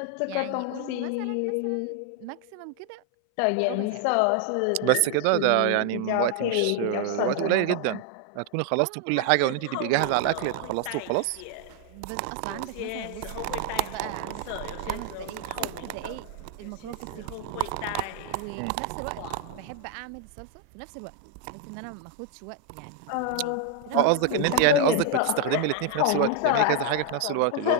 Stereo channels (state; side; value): different; both; correlation 0.00